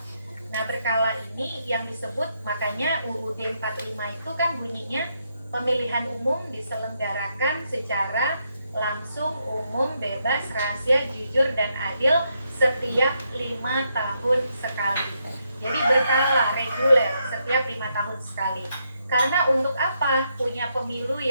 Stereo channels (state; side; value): inverted; both; correlation -0.79